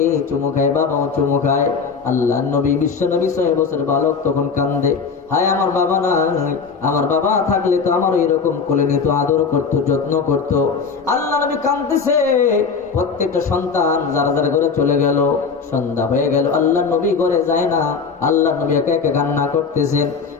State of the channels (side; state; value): right; quieter; 5.4 dB